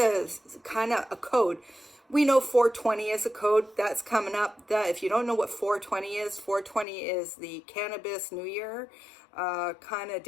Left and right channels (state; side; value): drops out; right; at 6.9 s